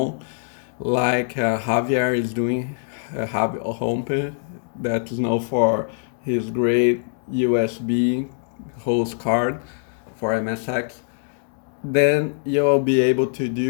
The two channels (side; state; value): right; silent; 63 dB below the other